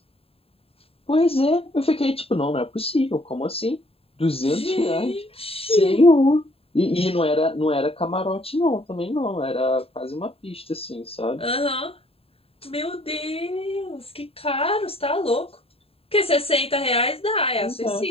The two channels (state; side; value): late; right; 0.28 ms